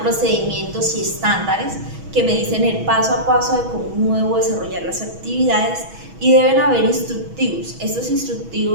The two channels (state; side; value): late; left; 6.2 ms